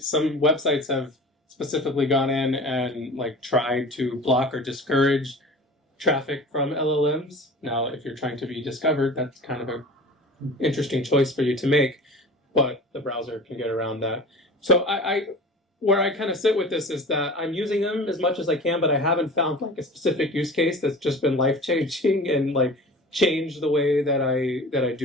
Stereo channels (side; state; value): both; normal; correlation 0.39